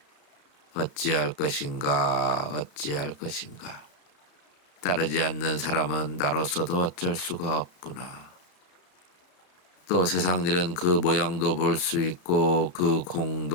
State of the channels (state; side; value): late; right; 34 ms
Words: 어찌할 것인가. 따르지 않는 사람은 나로서도 어쩔 수가 없구나. 또 세상 일은 그 모양도 볼 수 있고 그